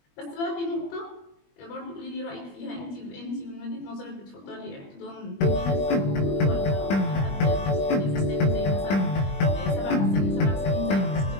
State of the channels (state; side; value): late; right; 21 ms